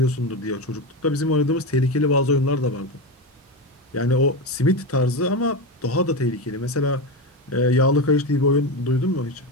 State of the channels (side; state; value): both; normal; correlation 0.17